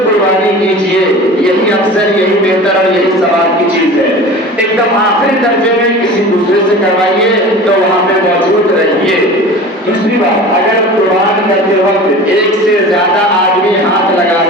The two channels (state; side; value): normal; both; correlation 0.37